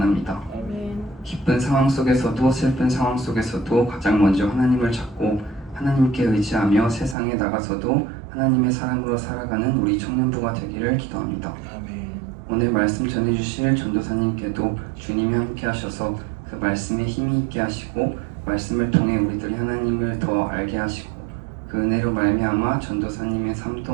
기쁜 상황 속에서도 슬픈 상황 속에서도 가장 먼저 하나님을 찾고 하나님께 의지하며 세상에 나가서도 하나님의 사람으로 살아가는 우리 청년부가 되기를 기도합니다. 오늘 말씀 전해주실 전도사님께도 주님이 함께 하셔서 그 말씀에 힘이 있게 하시고 말씀을 통해 우리들이 하나님을 더 알게 하시고 그 은혜로 말미암아 전도사님의 삶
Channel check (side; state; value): left; drops out; at 7.2 s